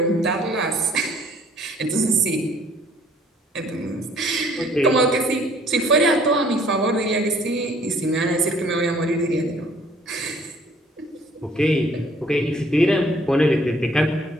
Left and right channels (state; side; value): normal; both; correlation 0.58